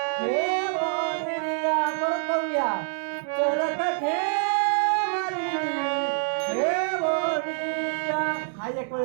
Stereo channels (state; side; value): silent; left; 60 dB below the other